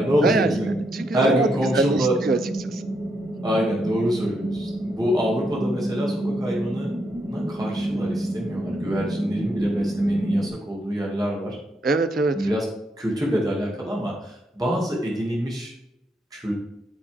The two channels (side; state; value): both; normal; correlation 0.79